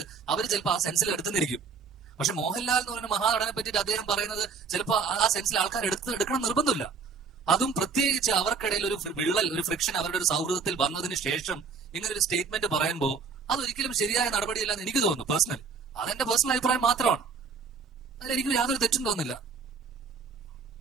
അവർ ചിലപ്പോൾ ആ സെൻസിൽ എടുത്തുന്നിരിക്കും. പക്ഷെ മോഹൻലാൽ എന്ന് പറയുന്ന മഹാനടനെ പറ്റിയിട്ട് അദ്ദേഹം പറയുന്നത് ചിലപ്പോൾ ആ സെൻസിൽ ആൾക്കാർ എടുക്കണം നിർബന്ധമില്ല. അതും പ്രത്യേകിച്ച് അവർക്കിടയിൽ ഒരു വിള്ളൽ, ഒരു ഫ്രിക്ഷൻ അവരുടെ ഒരു സൗഹൃദത്തിൽ വന്നതിന് ശേഷം ഇങ്ങനെ ഒരു സ്റ്റേറ്റ്മെന്റ് പറയുമ്പോൾ അതൊരിക്കലും ശരിയായ നടപടിയല്ല എന്ന് എനിക്ക് തോന്നുന്നു. പേഴ്സണലി അതെന്റെ പേഴ്സണൽ അഭിപ്രായം മാത്രമാണ്. അതിലെനിക്ക് യാതൊരു തെറ്റും തോന്നുന്നില്ല.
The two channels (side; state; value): left; quieter; 5.2 dB